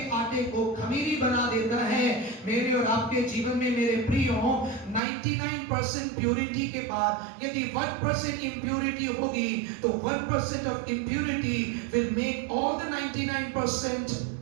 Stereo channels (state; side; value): drops out; left; at 5.0 s